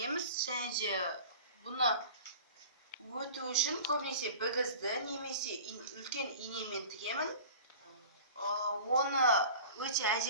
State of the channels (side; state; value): both; inverted; correlation -0.39